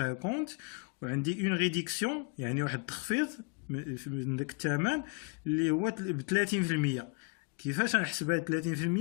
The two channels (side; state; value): right; quieter; 33.5 dB